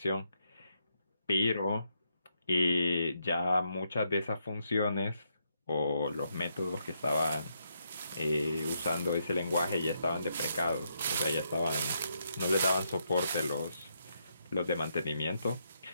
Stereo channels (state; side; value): inverted; both; correlation -0.79